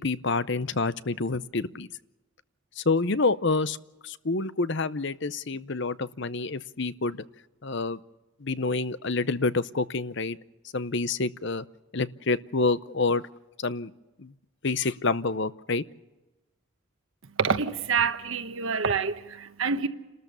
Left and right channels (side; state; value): both; normal; correlation -0.03